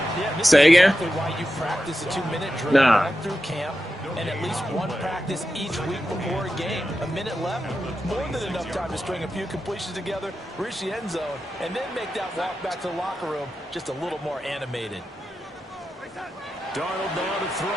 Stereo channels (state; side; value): normal; both; correlation 0.90